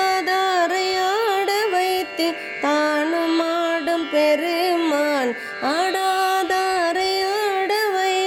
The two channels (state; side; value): identical; both; correlation 1.00